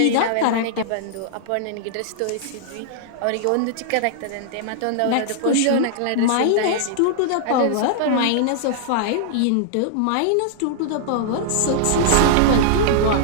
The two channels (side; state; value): both; different; correlation -0.01